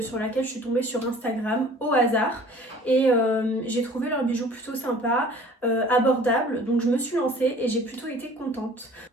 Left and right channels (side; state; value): both; normal; correlation 0.48